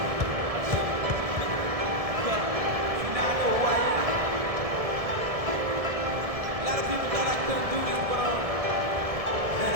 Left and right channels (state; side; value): late; left; 1.7 ms